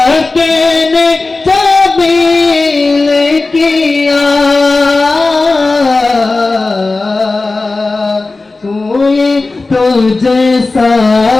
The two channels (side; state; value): right; quieter; 3.5 dB